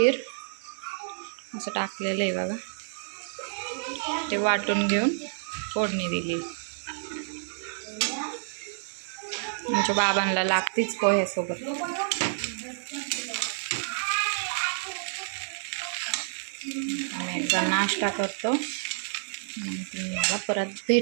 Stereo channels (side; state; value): left; silent; digital silence